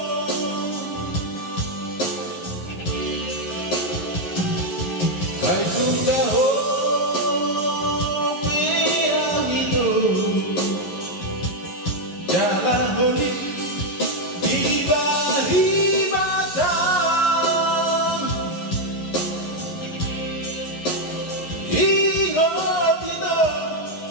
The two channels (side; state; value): right; late; 11 ms